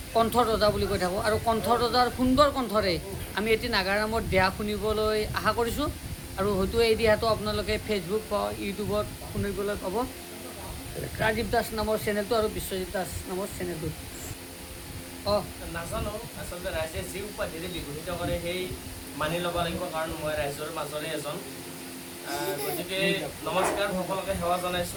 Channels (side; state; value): both; identical; correlation 1.00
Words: কণ্ঠ ৰজা বুলি কৈ থাকোঁ আৰু কণ্ঠ ৰজাৰ সুন্দৰ কণ্ঠৰে আমি এটি নাগাৰ নামৰ দিহা শুনিবলৈ আশা কৰিছোঁ আৰু হয়তো এই দিহাটো আপোনালোকে ফেচবুক বা ইউটিউবত শুনিবলৈ পাব ৰাজীৱ দাস নামৰ চেনেলটো আৰু বিশ্বজিৎ দাস নামৰ চেনেলটো নাজানো আচলতে ৰাইজে যি উপাধিৰে বিভূষিত কৰে সেই মানি ল'ব লাগিব কাৰণ মই ৰাইজৰ মাজৰে এজন গতিকে নমস্কাৰ সকলোকে সেৱা